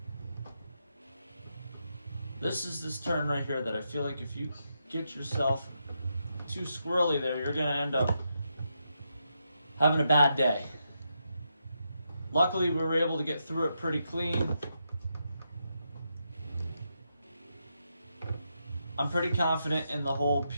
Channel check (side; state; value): both; inverted; correlation -0.83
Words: This is this turn right here that I feel like if you get yourself too squirrely there, you're going to end up having a bad day. Luckily, we were able to get through it pretty clean. I'm pretty confident in the whole